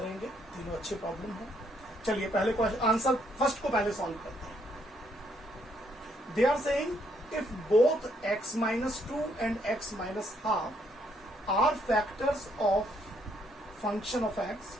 तीनों अच्छे प्रॉब्लम हैं। चलिए पहले क्वेश्चन आंसर फर्स्ट को पहले सॉल्व करते हैं। They are saying if both x minus 2 and x minus half are factors of function of x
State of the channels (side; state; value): both; normal; correlation 0.71